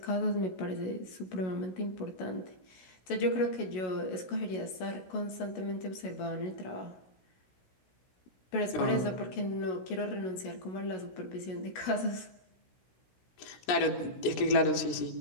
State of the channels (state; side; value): late; right; 16 ms